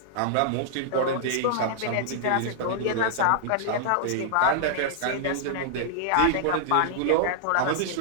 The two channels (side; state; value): both; different; correlation -0.01